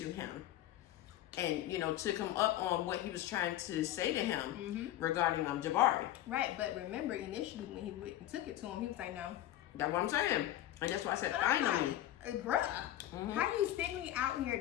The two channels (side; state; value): right; quieter; 13.6 dB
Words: him and, you know, took him up on what he was trying to say to him regarding Jabari. Right, but remember, initially when he went and took it to him, he was like, no. That's what I'm saying. And that's why I said finally. Bruh, how you send me out here